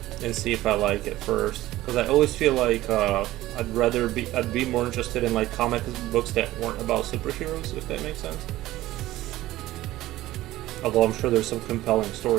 see if I like it first. Because I always feel like I'd be more interested in like comic books that weren't about superheroes, if that makes sense. Although I'm sure there's some compelling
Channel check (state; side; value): quieter; left; 16.1 dB